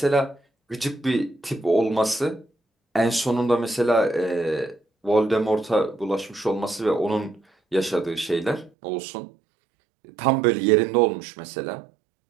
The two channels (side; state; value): left; drops out; at 8.7 s